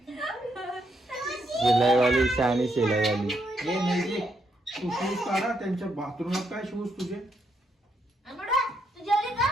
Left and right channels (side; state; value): both; normal; correlation 0.77